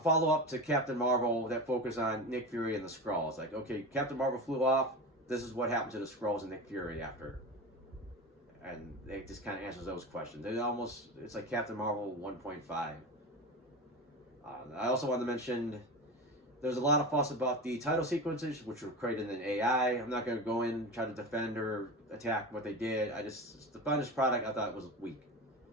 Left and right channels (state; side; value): normal; both; correlation 0.26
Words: to Captain Marvel that focused on Nick Fury and the Skrulls. Like, okay, Captain Marvel flew off. This is what happened to the Skrulls and Nick Fury after. and it just kind of answers those questions. It's like Captain Marvel 1.5. I also wanted to mention there's a lot of fuss about the title sequences, which were created in AI. I'm not going to go in and try to defend or attack what they did. The finished product I thought was weak.